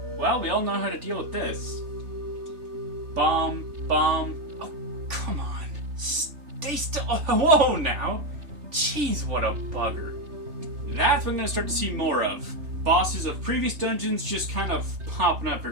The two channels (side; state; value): left; late; 3.5 ms